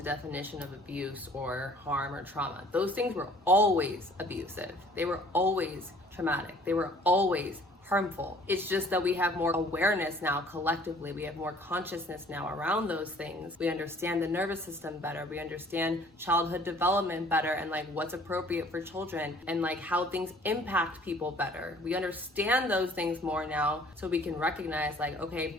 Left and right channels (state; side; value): normal; both; correlation 0.54